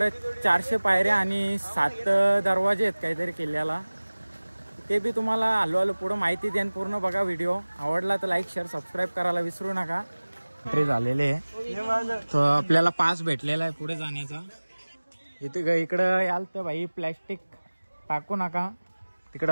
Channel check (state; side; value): inverted; both; correlation -1.00